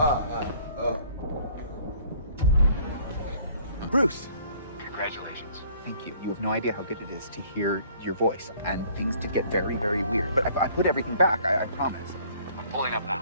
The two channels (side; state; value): both; inverted; correlation -0.57